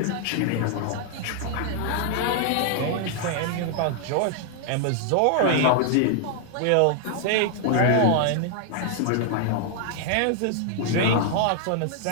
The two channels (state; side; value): different; both; correlation 0.00